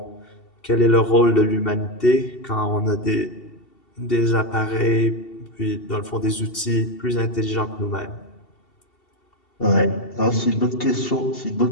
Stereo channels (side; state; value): right; late; 2.7 ms